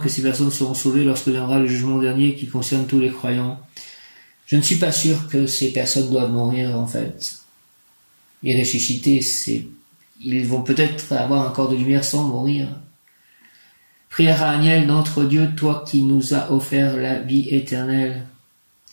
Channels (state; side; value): inverted; both; correlation -1.00